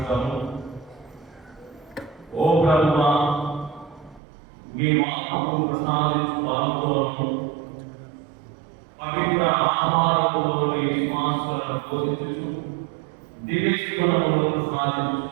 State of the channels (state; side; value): drops out; left; at 4.2 s